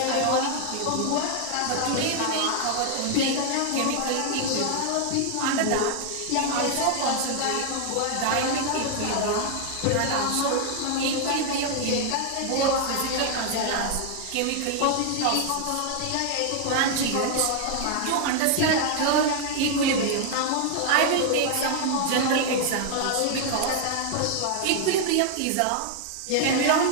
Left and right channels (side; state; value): both; different; correlation 0.00